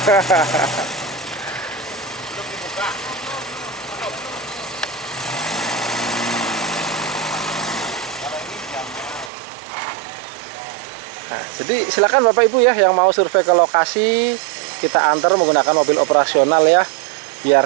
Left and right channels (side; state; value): left; drops out; at 9.3 s